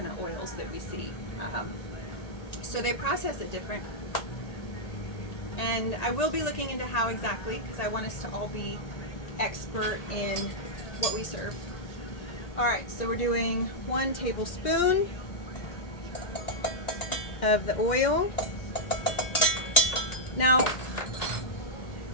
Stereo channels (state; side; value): late; right; 1.8 ms